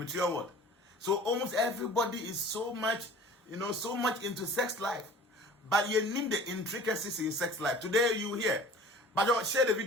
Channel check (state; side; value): normal; both; correlation 0.45